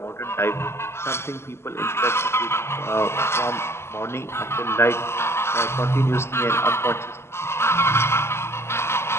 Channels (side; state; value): right; late; 0.12 ms